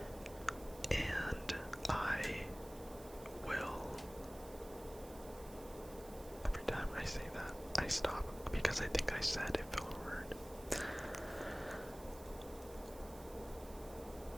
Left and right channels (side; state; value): right; noise; hiss, 19 dB below the sound